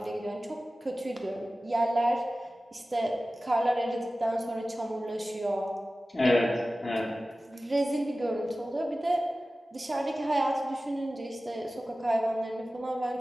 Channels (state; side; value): normal; both; correlation 0.96